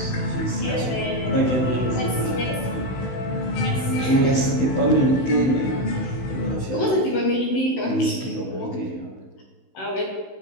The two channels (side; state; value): right; late; 16 ms